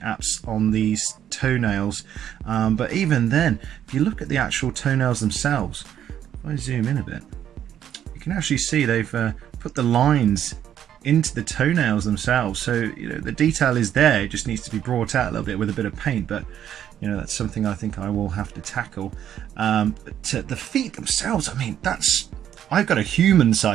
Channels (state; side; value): quieter; left; 10.2 dB